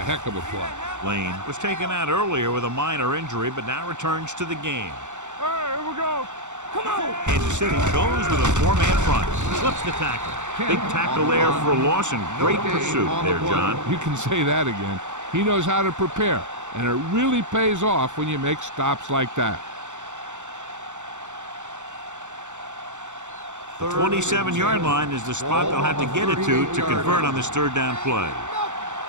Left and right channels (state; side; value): late; left; 0.85 ms